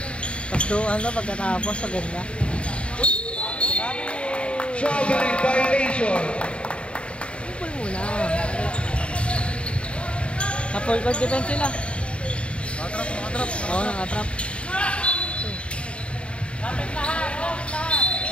Tapos doon na pagkatapos, maganda. Traveling violation. Kupol muna. Na-full court defense sila. Nakatrap. Oo, nakatrap. Lapit lahat.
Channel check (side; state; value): right; late; 0.058 ms